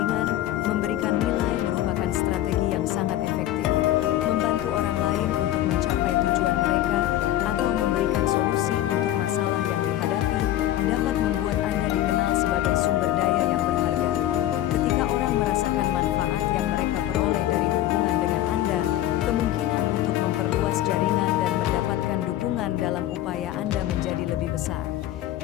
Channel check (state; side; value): quieter; right; 13.5 dB